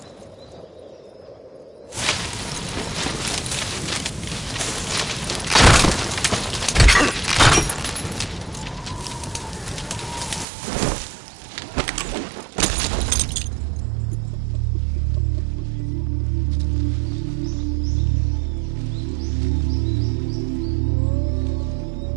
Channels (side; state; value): left; drops out; at 10.5 s